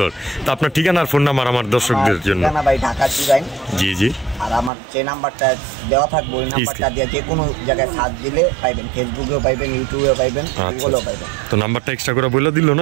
তো আপনার ঠিকানা আর ফোন নাম্বার আমার দর্শকদের জন্য। ভাই ঢাকা চিরাইন। জি জি। আর আমার যে নাম্বারটা দেওয়া থাকবে ওই নাম্বারটা দিয়ে যে কোনো জায়গায় সার্চ দিলে পাইবেন, ফেসবুকেও পাইবেন, ইউটিউবেও পাইবেন, গুগলেও পাইবেন। তো নাম্বারটা এক্সট্রা করে বলে দিল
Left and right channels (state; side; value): drops out; left; at 4.7 s